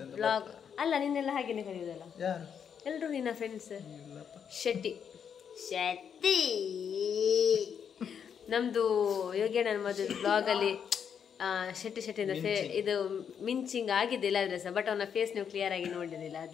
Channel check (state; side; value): quieter; right; 7.6 dB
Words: ವ್ಲಾಗ್ ಅಲ್ಲ, ನಿನ್ನೆಲ್ಲ ಹಾಗೇನೆ ಕರೆಯುವುದಲ್ಲ ಎಲ್ರು ನಿನ್ನ ಫ್ರೆಂಡ್ಸ್. ಶೆಟ್ಟಿ ಶೆಟ್ಟಿ ನಮ್ದು ಯೋಗೇಣ್ಣನ ಮದುವೆ ಬ್ಲಾಗಲ್ಲಿ ಶೆಟ್ಟಿ ಶೆಟ್ಟಿಂದ ಇದು ಮಿಂಚಿಂಗ್ ಆಗಿದೆ ಇಲ್ಲಾದ್ರೆ ಸಹ, ಬಟ್ ಅವನ ಫೇಸ್ ನೀವು ಕ್ಲಿಯರ್ ಆಗಿ ನೋಡಿದಿಲ್ಲ.